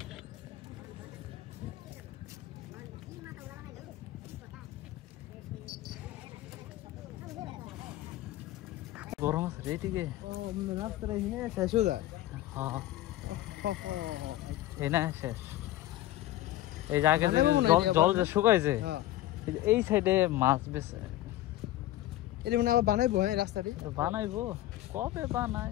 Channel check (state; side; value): quieter; right; 14.9 dB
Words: গরম আছে রে এদিকে। রাস্তাটা এখানে শেষ হয়ে যায়। হ্যাঁ এই না শেষ। এই জায়গা জল যে শুকাইছে এই সাইডে মাছ বেছে এটা মানে আবার বানাইবো। হ্যাঁ রাস্তাটি বানাইবো, কবে বানাই?